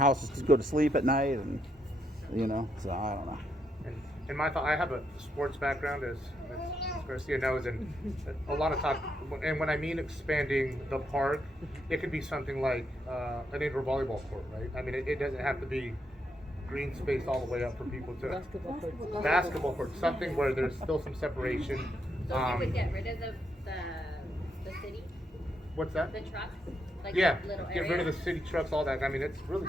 just to go to sleep at night, and so I don't know. And my thought, I have a sports background, as Garcia knows, and a lot of talk. And when I mean expanding the park, it could be something like an indoor volleyball court, right? I mean, it doesn't have to be green space all the way up for people to basketball court, something where there's still some separation. So you would get rid of the city, What's that? the trucks, like Yeah, little get rid of areas? the city trucks, all that. I mean, it's really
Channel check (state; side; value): normal; both; correlation 0.78